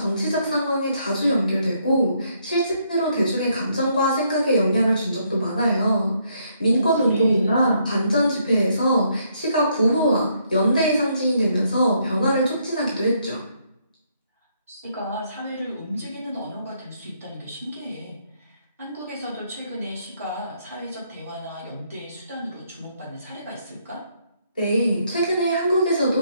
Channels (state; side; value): inverted; both; correlation -0.72